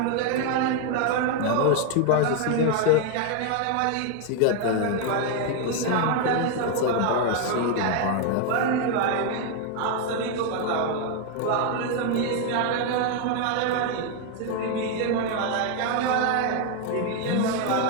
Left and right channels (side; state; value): both; different; correlation 0.01